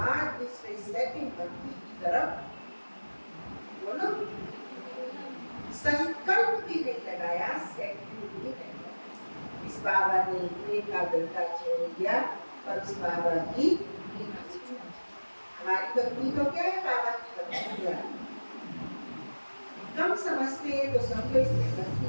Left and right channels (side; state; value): both; inverted; correlation -1.00